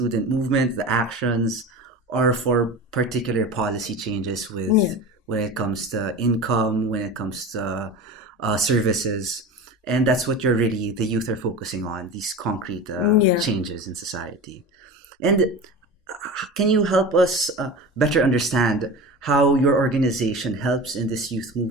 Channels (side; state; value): both; normal; correlation 0.31